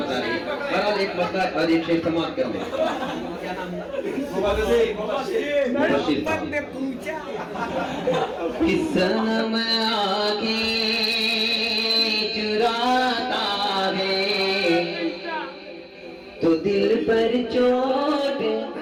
रही है। बहरहाल एक पत्ता और एक शेर समाप्त कर दे। सनम आगे चुराता है तो दिल पर चोट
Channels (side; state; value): both; identical; correlation 1.00